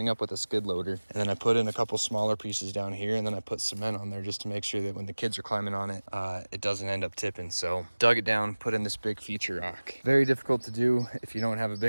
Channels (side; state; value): both; inverted; correlation -1.00